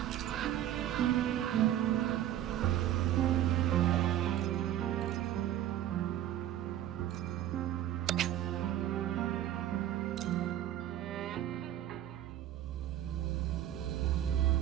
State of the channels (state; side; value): quieter; left; 12.2 dB